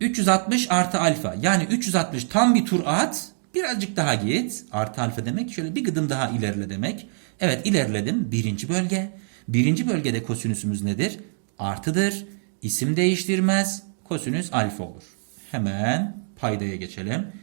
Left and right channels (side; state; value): left; silent; digital silence